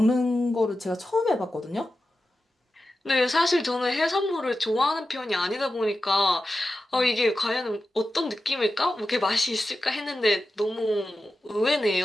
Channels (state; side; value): normal; both; correlation 0.92